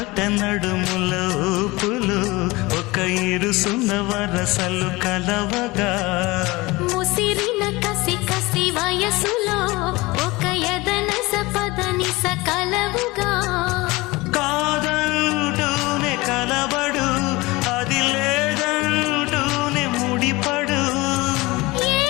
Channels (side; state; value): right; quieter; 22.1 dB